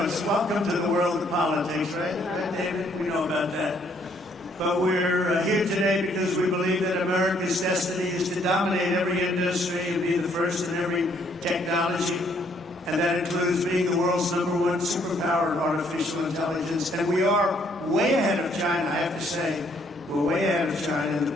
welcome to the world of politics, right? Right, David? We know about that. But we're here today because we believe that America's destiny is to dominate every industry and be the first in every technology. And that includes being the world's #1 superpower in artificial intelligence. And we are way ahead of China, I have to say. We're way ahead of China, and the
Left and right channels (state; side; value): normal; both; correlation 0.67